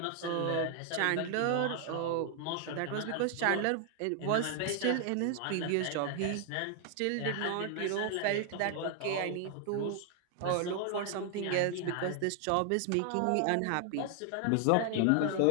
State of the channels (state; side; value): different; both; correlation 0.00